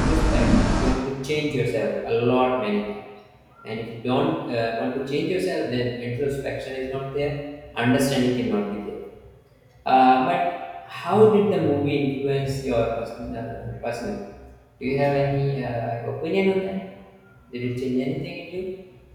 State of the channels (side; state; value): both; identical; correlation 1.00